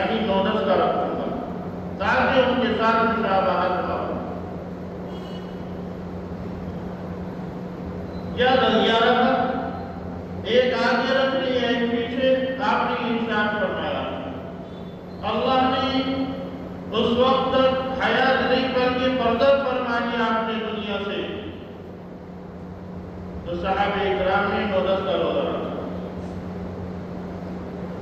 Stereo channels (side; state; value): both; identical; correlation 1.00